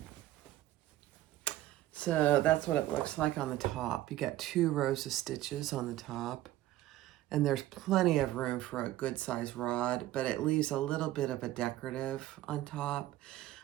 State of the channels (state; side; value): quieter; left; 14.9 dB